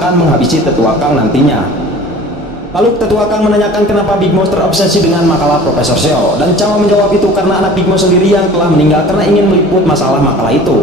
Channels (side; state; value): both; normal; correlation 0.44